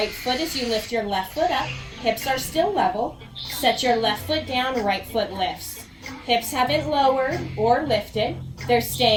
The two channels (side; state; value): both; identical; correlation 1.00